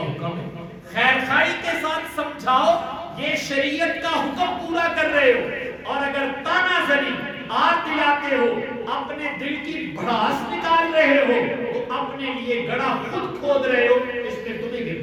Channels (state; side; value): identical; both; correlation 1.00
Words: ہے۔ خیرخواہی کے ساتھ سمجھاؤ، یہ شریعت کا حکم پورا کر رہے ہو، اور اگر تانا زنی، آر دلاتے ہو، اپنے دل کی بھڑاس نکال رہے ہو، تو اپنے لیے گڑھا خود کھود رہے ہو، اس میں تمہیں